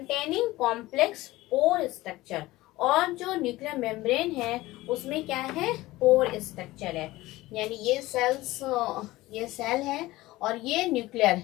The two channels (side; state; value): right; quieter; 18.3 dB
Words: कॉम्प्लेक्स पोर स्ट्रक्चर, और जो न्यूक्लियर मेम्ब्रेन है उसमें क्या है, पोर स्ट्रक्चर है, यानी ये सेल है और ये